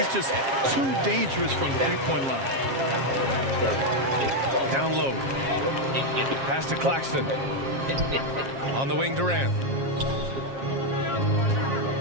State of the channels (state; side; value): late; left; 7.4 ms